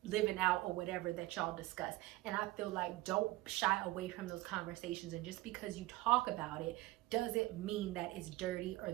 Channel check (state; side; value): quieter; left; 18.9 dB